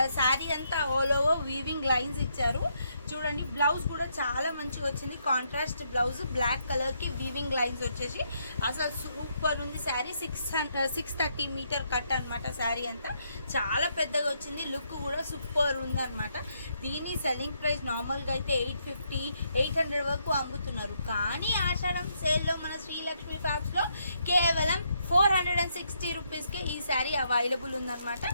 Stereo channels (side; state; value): both; inverted; correlation -0.76